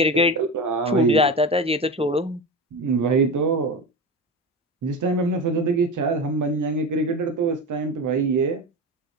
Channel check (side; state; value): both; normal; correlation 0.24